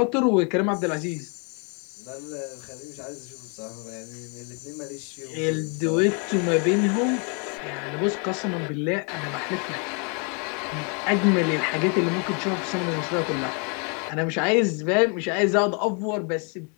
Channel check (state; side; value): quieter; right; 36.5 dB